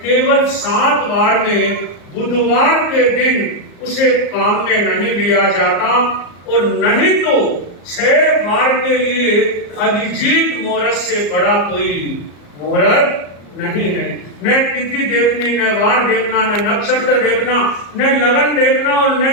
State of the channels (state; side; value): late; right; 34 ms